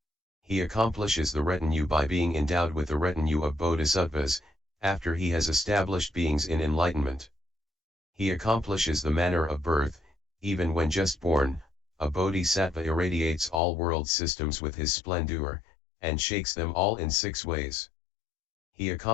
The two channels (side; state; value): right; drops out; at 13.6 s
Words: He accomplishes the retinue by being endowed with the retinue of bodhisattvas, after he has established beings in enlightenment. He accomplishes the manner of birth, even when just born, a bodhisattva irradiates all world systems with his splendor, and shakes them all in 6 ways. He